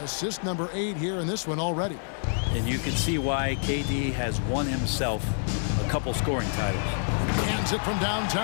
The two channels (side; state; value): right; silent; 60 dB below the other